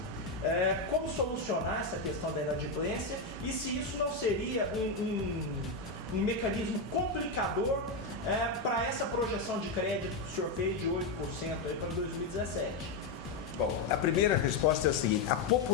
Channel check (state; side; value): quieter; right; 3.4 dB